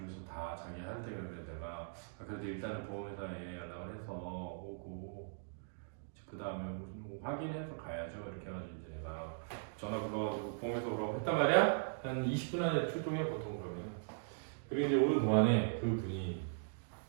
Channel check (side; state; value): left; silent; digital silence